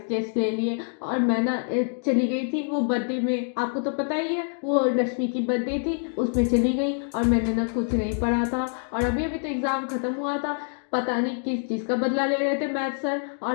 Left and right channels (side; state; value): right; silent; 61 dB below the other